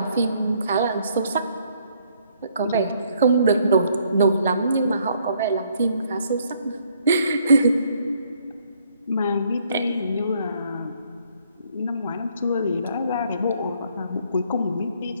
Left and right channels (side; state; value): both; inverted; correlation -0.67